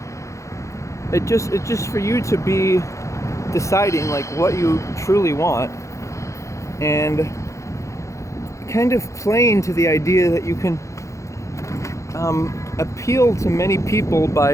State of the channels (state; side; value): late; right; 0.15 ms